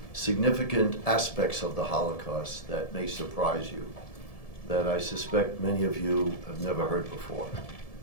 significant aspects of the Holocaust that may surprise you, that I suspect many of you have never heard before.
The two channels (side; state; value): right; late; 1.7 ms